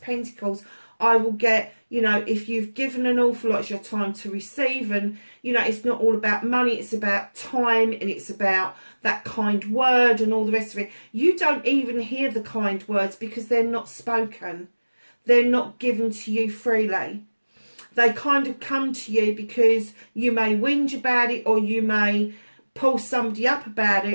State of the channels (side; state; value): both; inverted; correlation -1.00